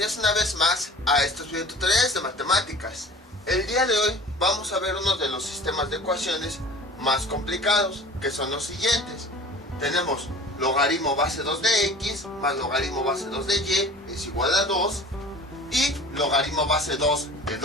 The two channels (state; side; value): normal; both; correlation 0.43